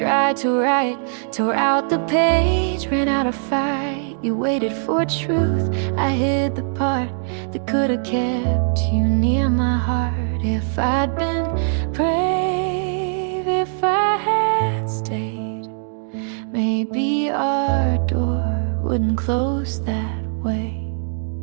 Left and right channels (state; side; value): silent; left; 64 dB below the other